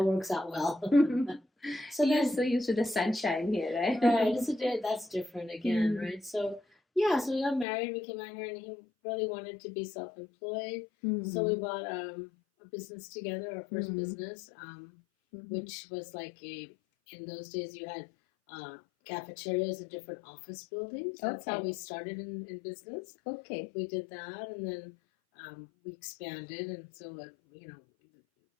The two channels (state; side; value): drops out; right; at 7.7 s